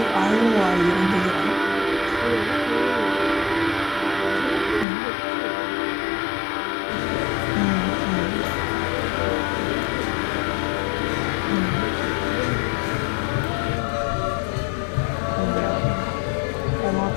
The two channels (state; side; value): drops out; right; at 4.9 s